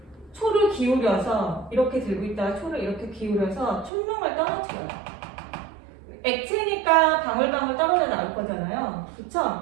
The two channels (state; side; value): drops out; left; at 3.9 s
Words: 초를 기울여서 이렇게 들고 있다가 초를 이렇게 기울여서 촛농을 떨어뜨려요. 액체니까 방울방울 떨어져 나올 거잖아요.